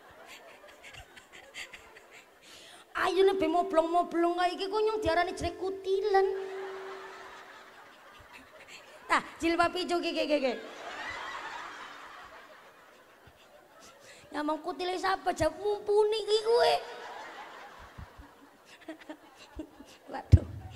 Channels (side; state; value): both; identical; correlation 1.00